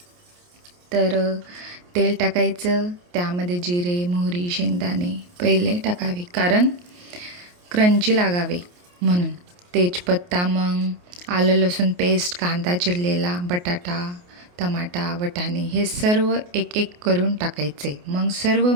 तर तेल टाकायचं, त्यामध्ये जिरे, मोहरी, शेंगदाणे पहिले टाकावे कारण क्रंची लागावे म्हणून. तेजपत्ता, मग आलं लसूण पेस्ट, कांदा चिरलेला, बटाटा, टमाटा, वाटाणे हे सर्व एक एक करून टाकायचे. मग सर्व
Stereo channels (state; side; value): late; left; 28 ms